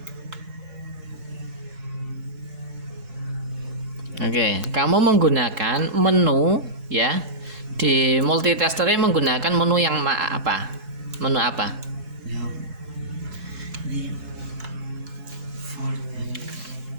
Oke, kamu menggunakan menu ya. Di multitesternya menggunakan menu yang apa? Menu apa? Yang ini volt.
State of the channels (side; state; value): left; late; 4.7 ms